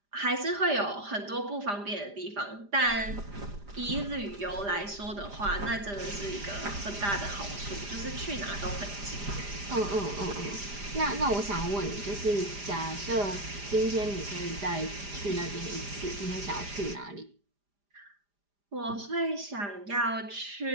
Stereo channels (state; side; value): late; left; 5.0 ms